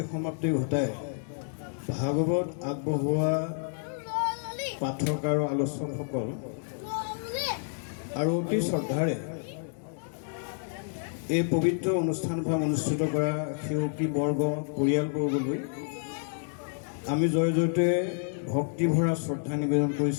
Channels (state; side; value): silent; right; 58 dB below the other